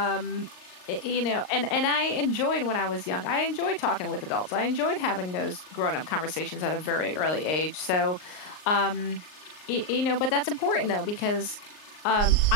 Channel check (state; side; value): late; right; 38 ms